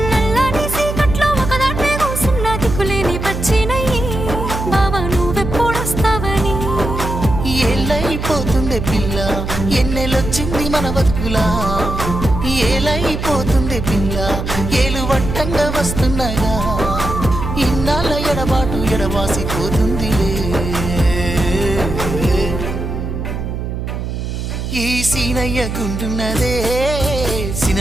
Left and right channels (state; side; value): noise; right; hum, 5 dB below the sound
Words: నల్లని సీకట్లో ఒకదాన్నే కూసున్న దిక్కులేని పచ్చినయ్యి బావా నువ్వెప్పుడొస్తావని ఏళ్ళైపోతుంది పిల్ల ఎన్నెలొచ్చింది మన బతుకులా ఏలైపోతుంది పిల్ల ఏలు వట్టంగా వస్తున్నాగా ఇన్నాళ్ళ ఎడబాటు ఎడవాసిపోతుందిలే ఈ సీనయ్య గుంటున్నదే